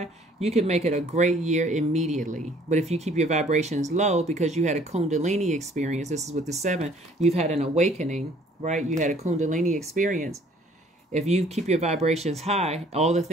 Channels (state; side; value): normal; both; correlation 0.58